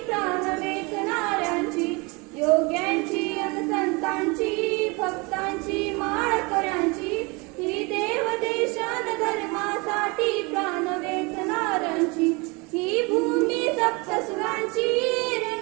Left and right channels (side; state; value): left; quieter; 27.7 dB